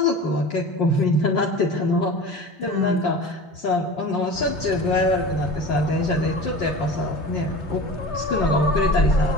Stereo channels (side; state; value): both; normal; correlation 0.36